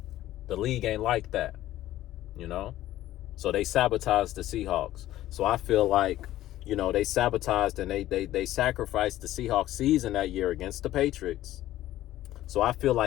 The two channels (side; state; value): right; quieter; 14.3 dB